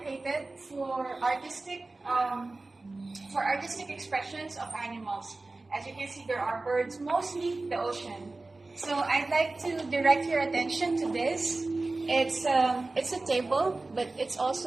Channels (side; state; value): left; quieter; 3.2 dB